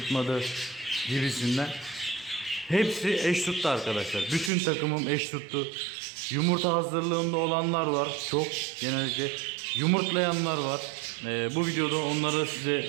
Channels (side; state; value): left; drops out; at 4.5 s